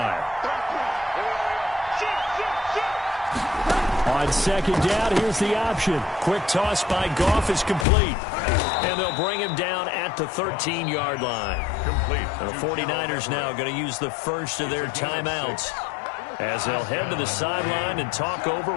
On On second down, here's the option. Quick toss by Goff is complete. And they'll bring him down at the 13-yard line. Complete. The 49ers now going to use the first of their timeouts as they'll head to the sideline and talk over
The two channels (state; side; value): drops out; right; at 7.9 s